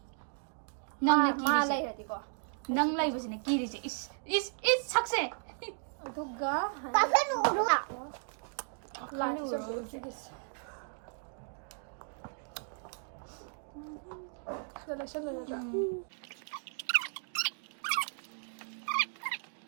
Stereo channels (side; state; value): left; silent; 54 dB below the other